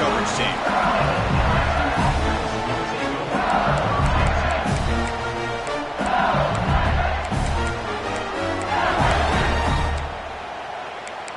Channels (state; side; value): identical; both; correlation 1.00